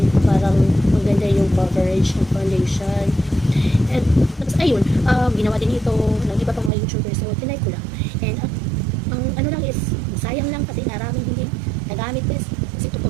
parang maganda yung coverage ng foundation. And ayun, ginawa din ito ng iba pang mga YouTubers, so tinay ko lang. And ang ano lang is, sayang lang kasi maraming hindi nagamit bes. Kasi ito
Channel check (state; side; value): drops out; left; at 6.7 s